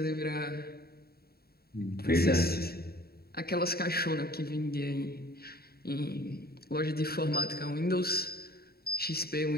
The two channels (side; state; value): right; late; 0.45 ms